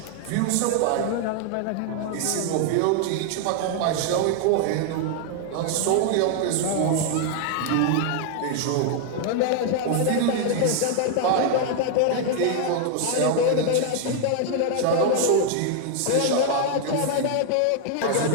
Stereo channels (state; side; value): different; both; correlation 0.00